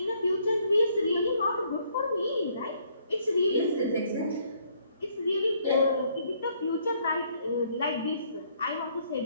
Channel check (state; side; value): inverted; both; correlation -0.67